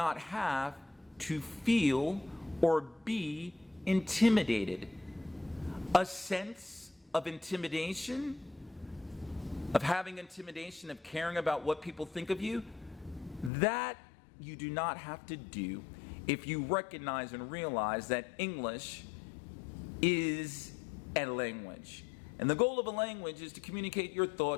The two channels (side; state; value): right; drops out; at 13.5 s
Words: have to feel or be intimidated. A sense of intimidation, of having intimidation, of caring about what people think of you, that you do not have to do if you recognize and realize that English is a language. And the goal of a language is to communicate your